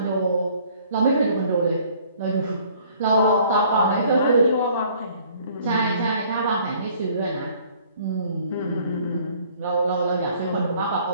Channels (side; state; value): both; inverted; correlation -0.58